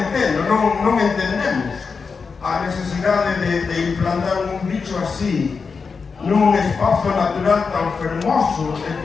non entendemos a necesidade de implantar un bicho así nun espazo natural tan fermoso e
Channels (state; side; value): quieter; right; 5.1 dB